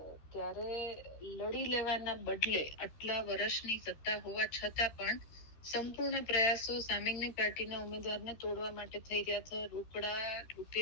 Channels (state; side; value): late; right; 13 ms